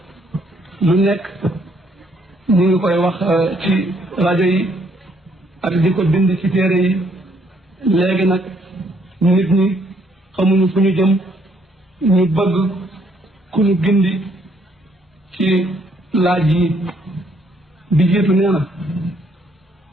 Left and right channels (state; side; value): normal; both; correlation 0.69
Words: lu nekk ñu ngi koy wax ci rajo yi ak di ko bind ci téere yi léegi nag nit ñi xamuñu fu ñu jëm ñu bëgg ku ñu gindi ci laaj yi bi jiitu nee na